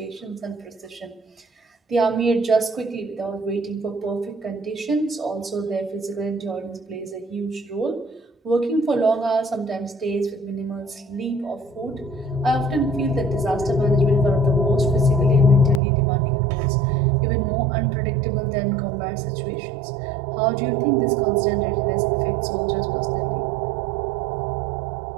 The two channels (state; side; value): drops out; left; at 15.8 s